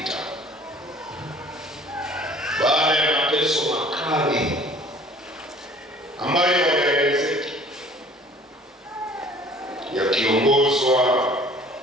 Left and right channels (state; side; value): normal; both; correlation 0.51